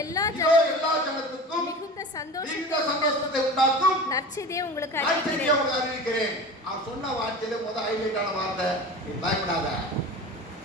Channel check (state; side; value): normal; both; correlation 0.34